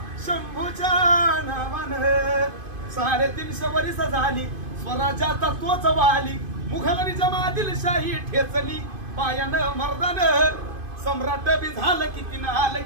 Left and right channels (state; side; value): late; left; 2.5 ms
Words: शंभूच्या नावानं 350 वर्ष झाली स्वराज्याचा तोच वाली मुघलांनी जमातील शाही ठेचली पायानं मर्दानं सम्राट बी झालं किती नाल